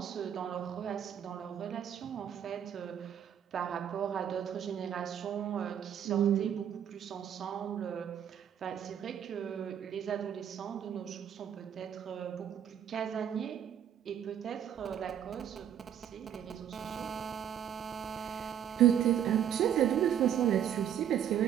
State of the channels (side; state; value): left; quieter; 9.5 dB